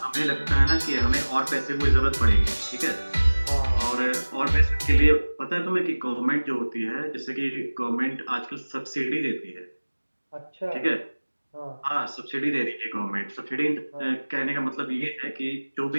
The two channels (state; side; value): inverted; both; correlation -1.00